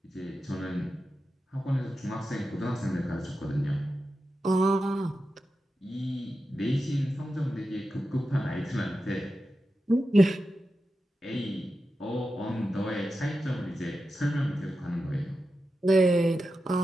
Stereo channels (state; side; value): normal; both; correlation 0.91